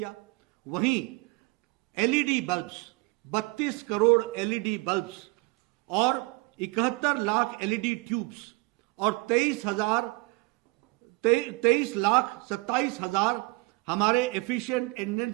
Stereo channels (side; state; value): left; quieter; 25.9 dB